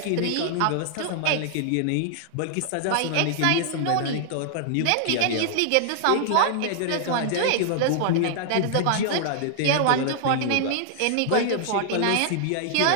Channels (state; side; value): different; both; correlation -0.01